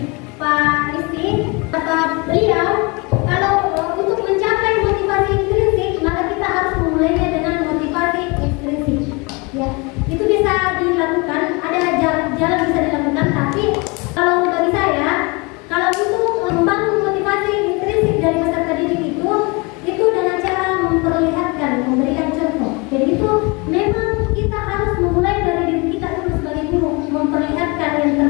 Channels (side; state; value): right; quieter; 28.2 dB